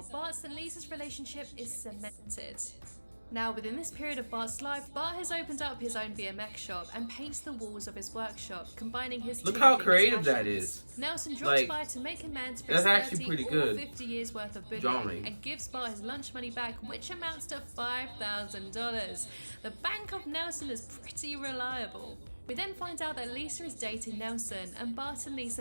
Bart's and Lisa's relationship is cemented. Now, within this period of Bart's life, Bart has opened up his own BMX shop and paints the walls of his workshop, combining his Look two how biggest creative that passions. is. Nelson drops Like, by to make amends for that's his actually 30 pretty or good 50 years worth of bullying drawing. and gives Bart his lunch money back, which amounts to $5,000. The bank of Nelson is pretty reliable. We then find out that Lisa is dating Nelson, and Bart and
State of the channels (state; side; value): inverted; both; correlation -1.00